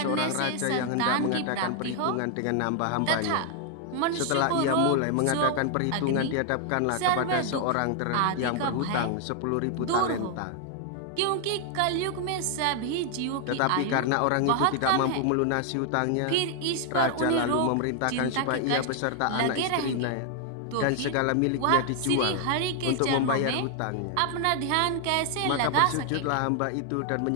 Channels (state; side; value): different; both; correlation 0.00